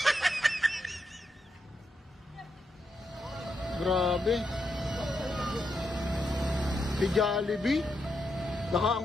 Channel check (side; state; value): both; normal; correlation 0.83